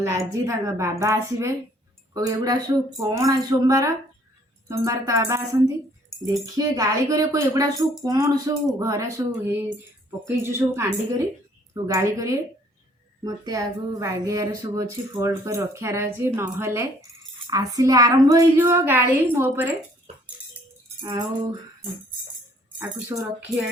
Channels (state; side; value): normal; both; correlation 0.61